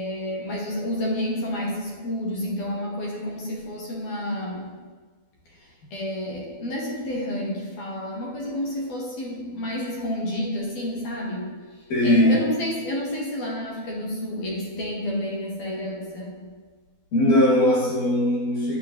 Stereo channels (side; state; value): right; late; 12 ms